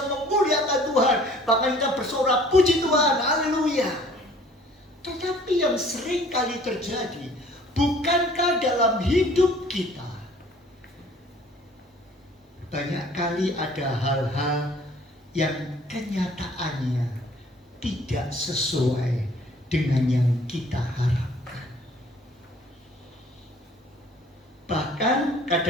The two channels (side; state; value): both; normal; correlation 0.54